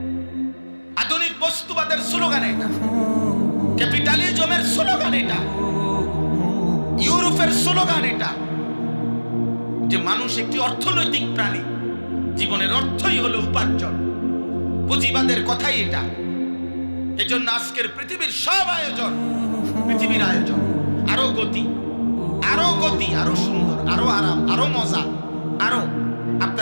আধুনিক বস্তুবাদের স্লোগান এটা, ক্যাপিটালিজমের স্লোগান এটা, ইউরোপের স্লোগান এটা, যে মানুষ একটি অর্থনৈতিক প্রাণী, জীবনের অর্থই হলো উপার্জন। পুঁজিবাদের কথাই এটা। এজন্য আজকের পৃথিবীর সব আয়োজন, পৃথিবীর আয়োজন আরো গতি, আরো সুন্দর, আরো আরাম, আরো মজা, আরো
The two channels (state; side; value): inverted; both; correlation -1.00